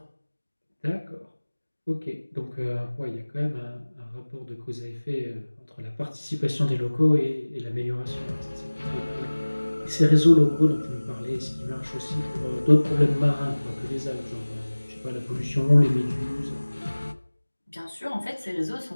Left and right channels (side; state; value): both; inverted; correlation -1.00